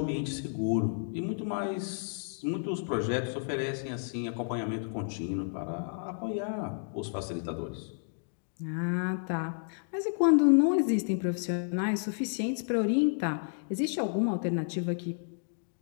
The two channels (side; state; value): right; silent; digital silence